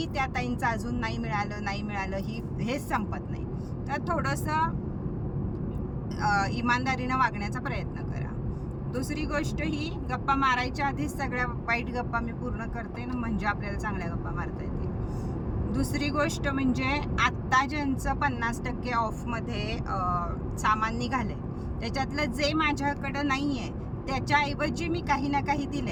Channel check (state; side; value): identical; both; correlation 1.00